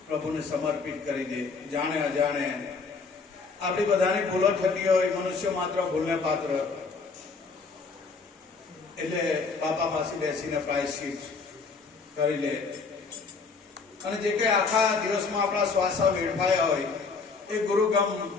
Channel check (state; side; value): quieter; right; 4.6 dB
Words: પ્રભુને સમર્પિત કરી દે. જાણે અજાણે આપણી બધાની ભૂલો થતી હોય, મનુષ્ય માત્ર ભૂલને પાત્ર, એટલે બાપા પાસે બેસીને પ્રાયશ્ચિત કરી લે. અને જે કઈ આખા દિવસમાં આપણા શ્વાસા વેડફાયા હોય એ ગુરુગમ